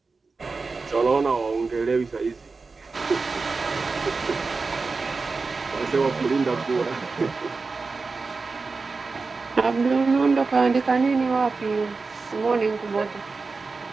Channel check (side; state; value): left; quieter; 4.2 dB